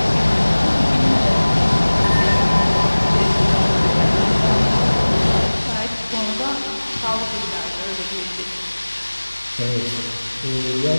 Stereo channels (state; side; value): inverted; both; correlation -1.00